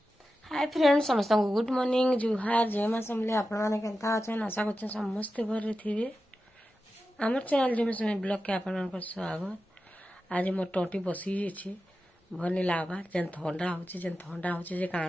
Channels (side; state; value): both; normal; correlation 0.92